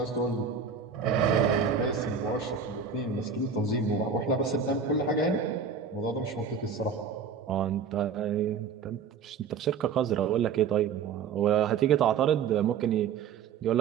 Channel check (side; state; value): left; quieter; 6.3 dB